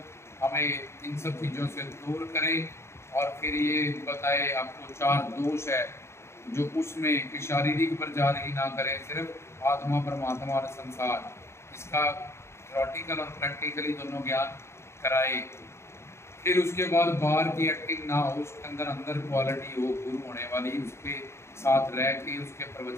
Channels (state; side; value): late; right; 0.13 ms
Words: हमें इन सब चीज़ों से दूर करें। और फिर ये बताए आपको 4 दोष है जो उसमें कि शारीरिक प्रचार ही ना करें, सिर्फ आत्मा, परमात्मा और संसार, इसका थ्योरेटिकल और प्रैक्टिकली दोनों ज्ञान कराए। फिर उसके बाद बाहर की एक्टिंग ना हो, उसके अंदर अंदर क्वालिटी हो गुरु होने वाली, उसके साथ रह के उसके